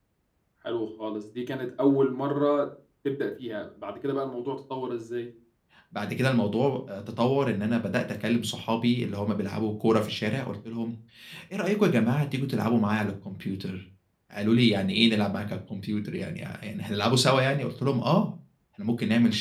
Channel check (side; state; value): both; identical; correlation 1.00